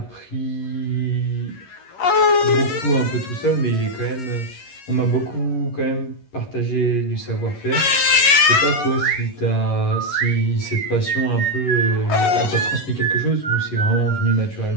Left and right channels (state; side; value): late; right; 11 ms